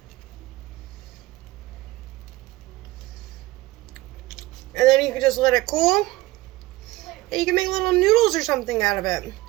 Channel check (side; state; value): left; quieter; 19.1 dB